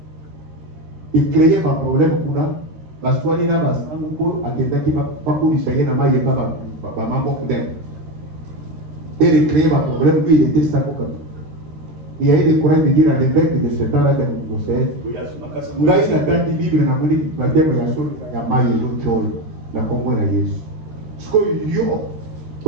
Il créait un problème pour nous. Parce que nous avons et de créer un problème, lui il était savant. Il y a eu des courants de dire à l'évêque de ce temps-là de Mousset, il a eu la date libre dans la Monique, la terre de la Somme, la Maille et l'autre, la Congo et la Yesu. Ce que yo,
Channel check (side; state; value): left; late; 13 ms